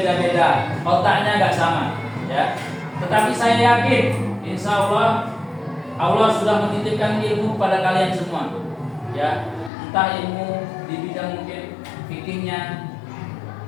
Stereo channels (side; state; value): right; drops out; at 9.7 s